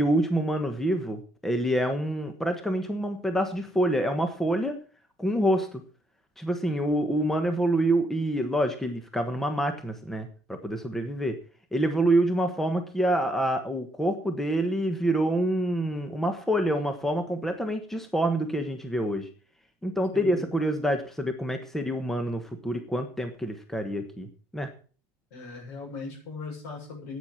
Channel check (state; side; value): normal; both; correlation 0.76